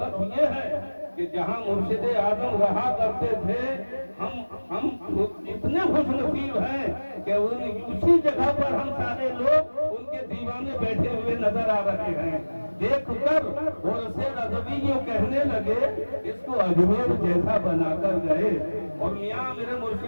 یہ ہے کہ جہاں مرشد اعظم رہا کرتے تھے ہم اتنے خوش نصیب ہیں کہ اسی جگہ پر ہم سارے لوگ ان کے دیوانے بیٹھے ہوئے نظر آ رہے ہیں. دیکھ کر غرث رضوی یوں کہنے لگے اس کو اجمیر جیسا بنا کر گئے. اور میاں میرے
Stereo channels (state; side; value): inverted; both; correlation -1.00